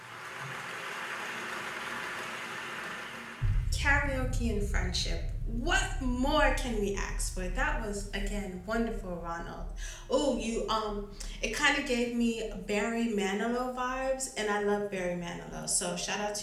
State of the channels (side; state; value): both; identical; correlation 1.00